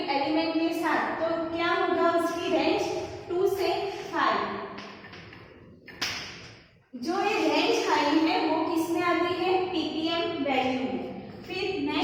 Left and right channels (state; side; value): identical; both; correlation 1.00